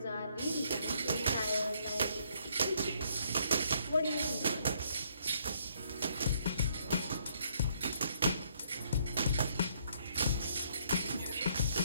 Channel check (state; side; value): inverted; both; correlation -0.68